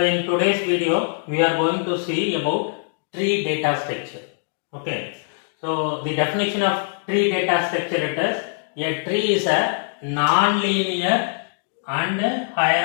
today's video, we are going to see about tree data structure. Okay. So the definition of tree data structure it is a tree is a non-linear and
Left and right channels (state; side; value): silent; right; digital silence